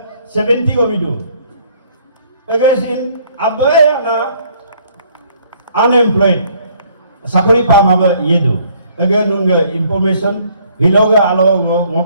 70 govido. Again, Abayana unemployed. Sakori pamaba yedo. Again, nunga information. Hiloga alo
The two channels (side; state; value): both; inverted; correlation -0.62